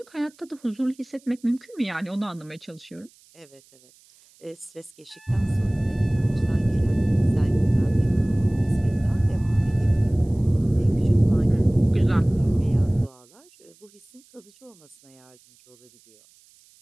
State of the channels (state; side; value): noise; right; hiss, 29 dB below the sound